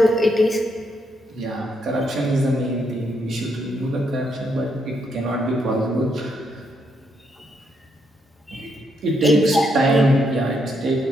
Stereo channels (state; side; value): normal; both; correlation 0.77